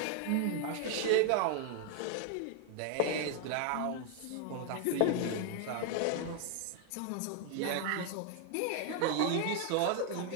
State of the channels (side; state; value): both; different; correlation 0.00